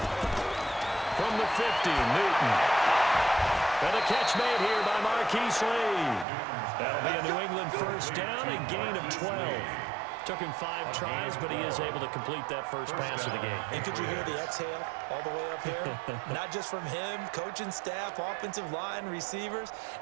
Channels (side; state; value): left; drops out; at 6.2 s